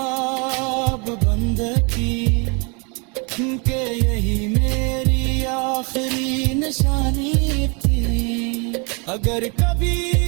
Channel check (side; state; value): left; quieter; 32.6 dB